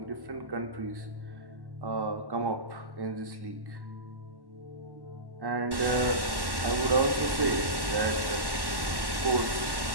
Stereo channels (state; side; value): late; left; 1.1 ms